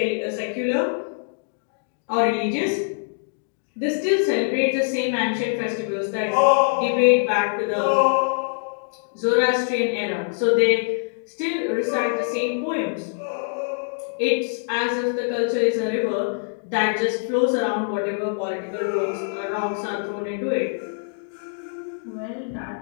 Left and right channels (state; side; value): silent; right; digital silence